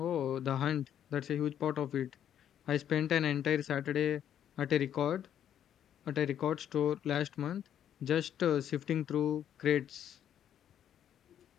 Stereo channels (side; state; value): right; quieter; 9.9 dB